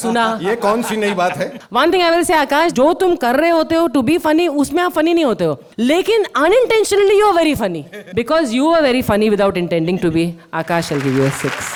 ये कौन सी नई बात है? One thing I will say आकाश, जो तुम कर रहे होते हो टू बी फनी, उसमें आप फनी नहीं होते हो, लेकिन unintentionally you are very funny, because you are very funny without intending to be. Akash will give you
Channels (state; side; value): identical; both; correlation 1.00